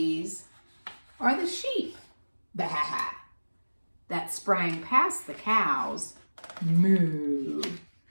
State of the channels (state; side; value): inverted; both; correlation -1.00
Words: are the sheep, bah, that sprang past the cows, moo,